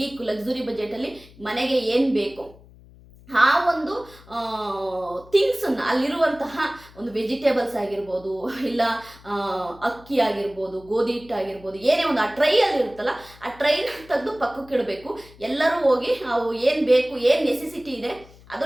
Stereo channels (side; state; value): left; noise; hum, 23 dB below the sound